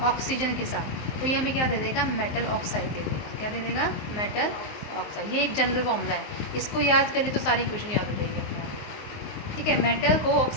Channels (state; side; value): late; right; 19 ms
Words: ऑक्सीजन के साथ, तो ये हमें क्या दे देगा, मेटल ऑक्साइड दे देगा। क्या दे देगा, मेटल ऑक्साइड। ये एक जनरल फॉर्मूला है, इसको याद कर ले तो सारी क्वेश्चन याद हो जाएगी अपने आप। ठीक है, मेटल को